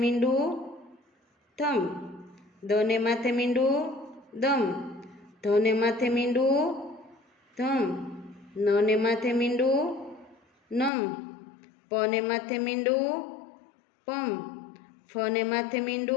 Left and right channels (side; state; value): right; drops out; at 10.9 s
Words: થમ. દને માથે મીંડું દમ. ધને માથે મીંડું ધમ. નને માથે મીંડું નમ. પને માથે મીંડું પમ. ફને માથે